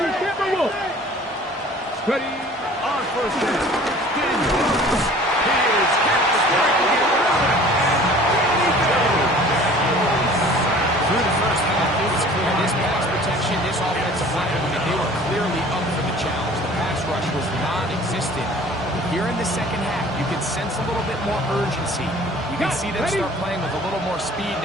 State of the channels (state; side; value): normal; both; correlation 0.48